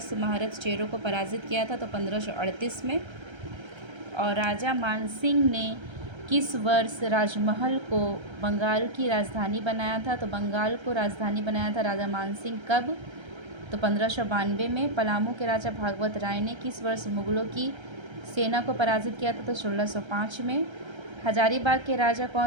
महारथ चेरो को पराजित किया था, तो 1538 में। और राजा मान सिंह ने किस वर्ष राजमहल को बंगाल की राजधानी बनाया था। तो बंगाल को राजधानी बनाया था राजा मान सिंह कब, तो 1592 में। पलामू के राजा भागवत राय ने किस वर्ष मुगलों की सेना को पराजित किया था, तो 1605 में। हजारीबाग के राजा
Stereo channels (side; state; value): left; late; 1.3 ms